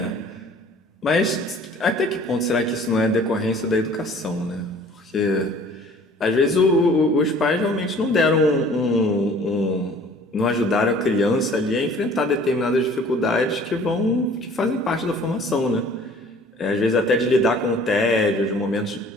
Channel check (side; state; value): both; normal; correlation 0.51